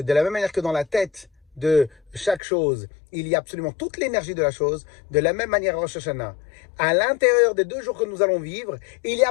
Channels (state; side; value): drops out; right; at 2.4 s